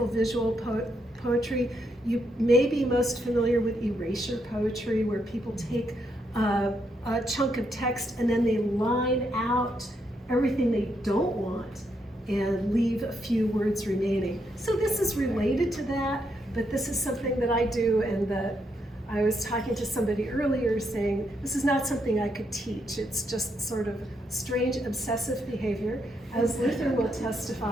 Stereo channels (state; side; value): normal; both; correlation 0.78